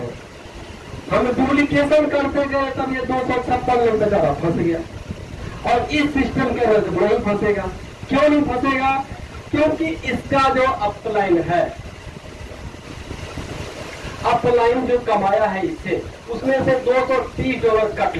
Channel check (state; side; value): identical; both; correlation 1.00